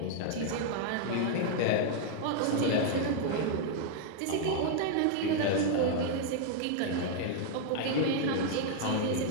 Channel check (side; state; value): both; different; correlation 0.00